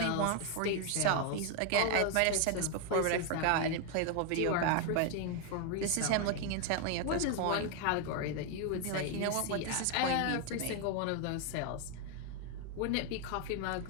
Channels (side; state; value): both; different; correlation 0.01